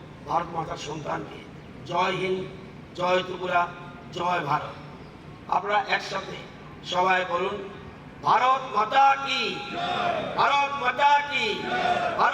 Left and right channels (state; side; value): identical; both; correlation 1.00